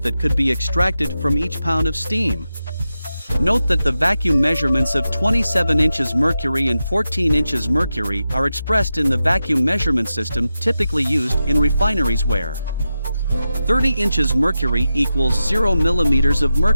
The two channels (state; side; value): inverted; both; correlation -0.91